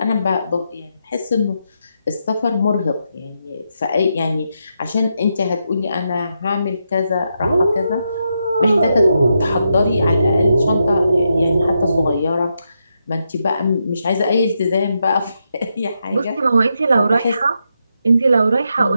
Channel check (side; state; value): both; inverted; correlation -0.83